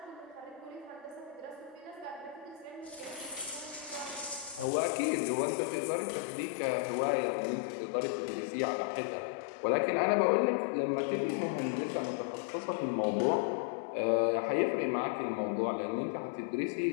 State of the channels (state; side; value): drops out; right; at 4.7 s